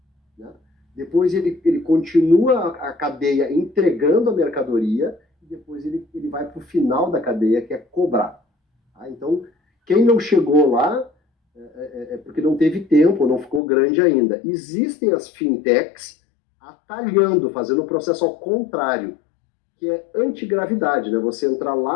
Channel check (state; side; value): drops out; right; at 13.6 s